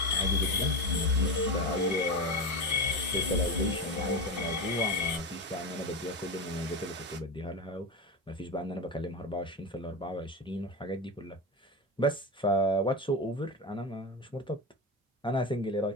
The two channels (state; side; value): normal; both; correlation 0.20